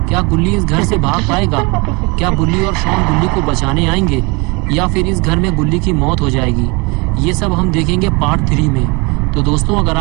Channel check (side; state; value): left; quieter; 28.2 dB